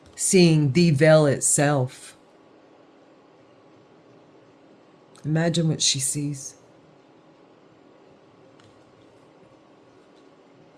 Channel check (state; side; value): identical; both; correlation 1.00